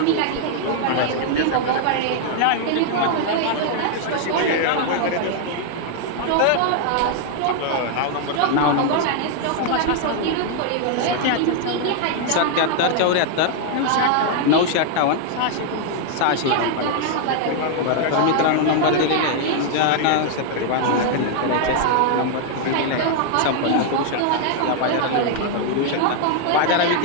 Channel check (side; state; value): both; different; correlation 0.00